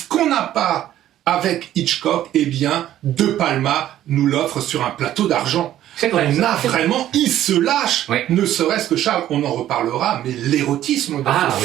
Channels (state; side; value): quieter; left; 12.5 dB